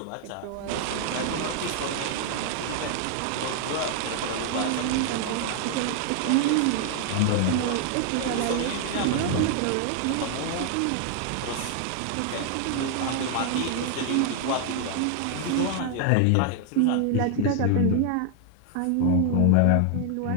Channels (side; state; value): both; different; correlation 0.00